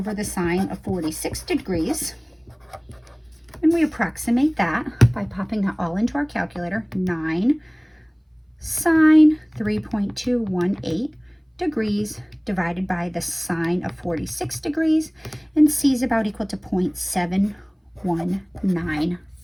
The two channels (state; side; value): identical; both; correlation 1.00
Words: the sine of 46 degrees. And we approximate that by popping that all into our calculator. 9 sine 3.218 degrees divided by the sine of 46 degrees, and C is about equal to